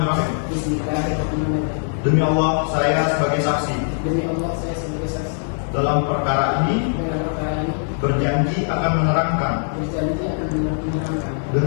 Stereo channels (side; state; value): right; silent; digital silence